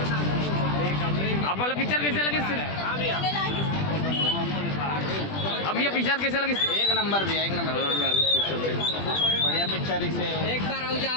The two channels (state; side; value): late; right; 20 ms